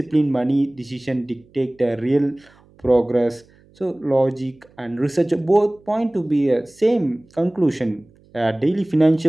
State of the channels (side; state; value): right; noise; hum, 29 dB below the sound